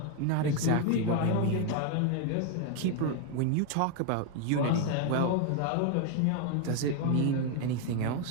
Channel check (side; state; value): both; different; correlation 0.01